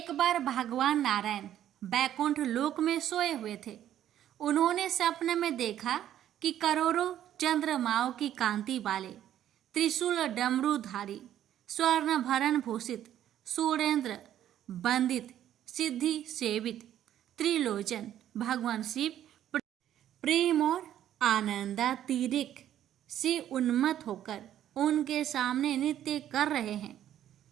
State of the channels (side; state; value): left; quieter; 11.3 dB